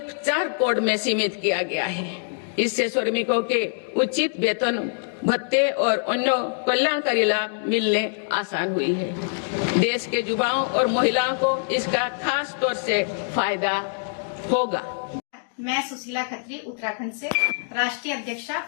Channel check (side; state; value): right; silent; digital silence